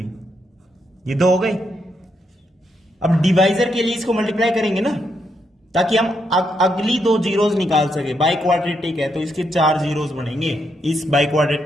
ये 2 हो गई। अब डिवाइजर के लिए इसको मल्टीप्लाई करेंगे ना, ताकि हम अगली 2 जीरोस निकाल सके। बाई क्वाड्रेटिक है तो इसके 4 जीरोस बनेंगे इस बाई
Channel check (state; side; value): normal; both; correlation 0.79